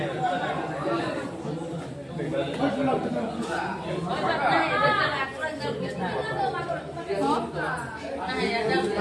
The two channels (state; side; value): identical; both; correlation 1.00